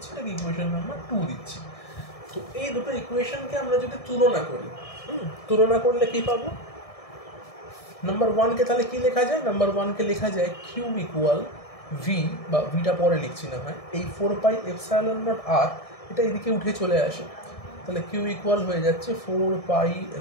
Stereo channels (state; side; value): late; right; 1.7 ms